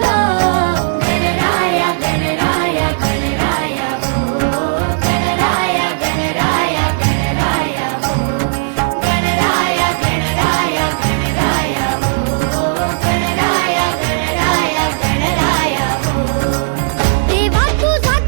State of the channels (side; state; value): left; silent; digital silence